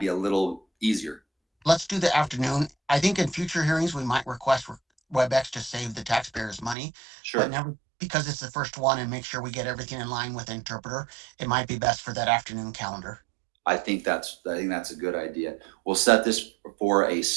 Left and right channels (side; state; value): left; drops out; at 6.8 s